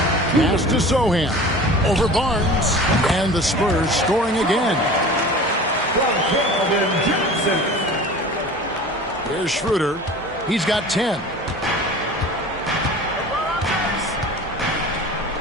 Pass to Sohan. Over Barnes. And the Spurs scoring again. Here's Schroeder. He's got 10.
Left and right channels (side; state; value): both; normal; correlation 0.39